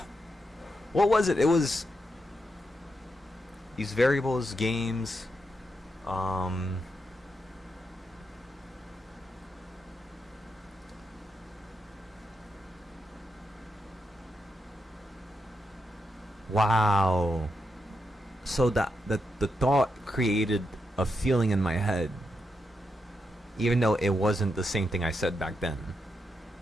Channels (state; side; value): normal; both; correlation 0.84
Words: What was it? It was these variables, games. Wow. So the thought created a feeling in my head, even though it wasn't the same thing I said back then.